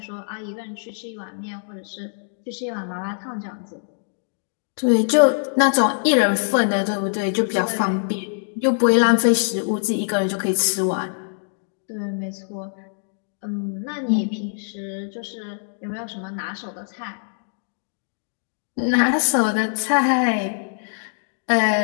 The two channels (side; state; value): right; silent; digital silence